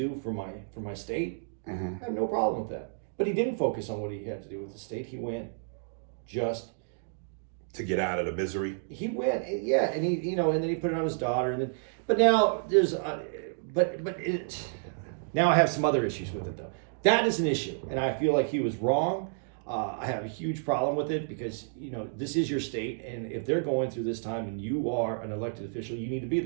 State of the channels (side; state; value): left; silent; digital silence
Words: for my state. Mm-hmm. I have no problem with that. But he didn't focus on what he had to do with the state. He went just to get out of the misery. He went, yeah, and he, you know, and then he put it on his daughter, and then, but now there's, now I have some other issues with it though. That is an issue, and I feel like he was wrong. I have a huge problem with it because, you know, this is your state, and if they're going through this time and you are an elected official, you need to be